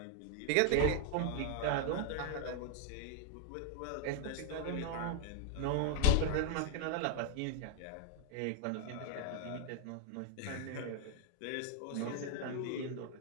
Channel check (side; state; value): both; different; correlation 0.00